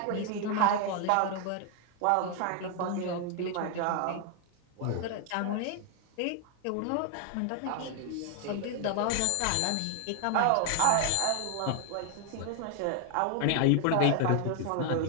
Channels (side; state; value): both; different; correlation 0.00